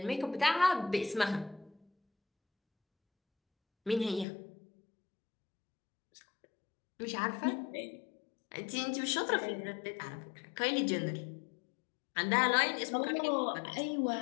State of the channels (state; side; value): drops out; right; at 4.2 s